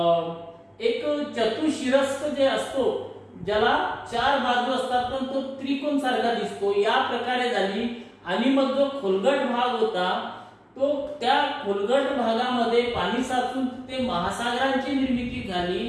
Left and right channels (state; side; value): identical; both; correlation 1.00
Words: एक चतुशिरस्क जे असतो, ज्याला 4 बाजू असतात पण तो त्रिकोण सारखा दिसतो, या प्रकारे झाली. आणि मग जो खोलगट भाग होता तो त्या खोलगट भागामध्ये पाणी साचून ते महासागरांची निर्मिती